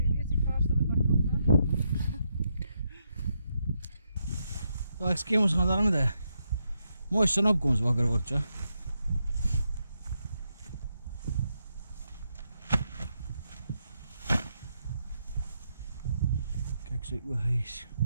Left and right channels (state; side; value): inverted; both; correlation -0.81